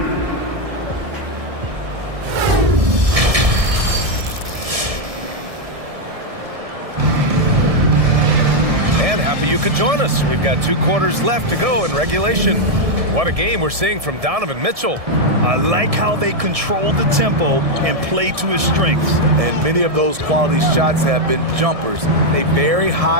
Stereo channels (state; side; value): late; left; 1.7 ms